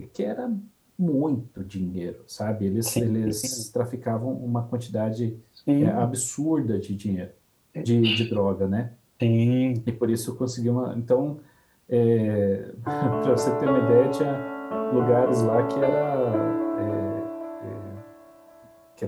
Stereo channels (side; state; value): both; identical; correlation 1.00